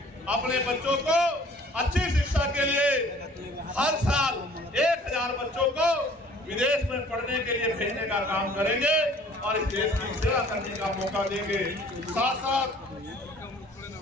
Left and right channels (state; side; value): normal; both; correlation 0.53